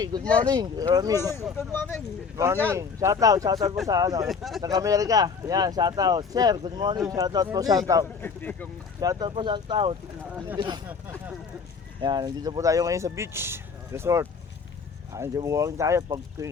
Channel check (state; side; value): quieter; right; 5.4 dB